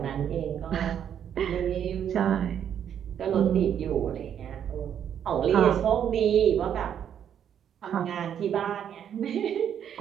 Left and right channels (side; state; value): left; quieter; 9.1 dB